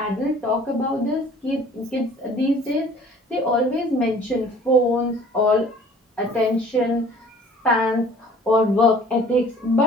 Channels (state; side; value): normal; both; correlation 0.51